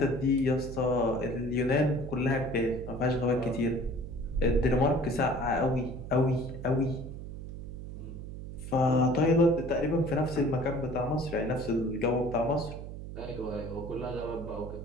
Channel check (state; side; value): noise; right; hum, 9 dB below the sound